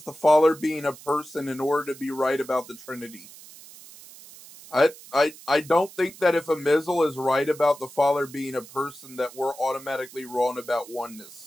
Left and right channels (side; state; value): right; noise; hiss, 19 dB below the sound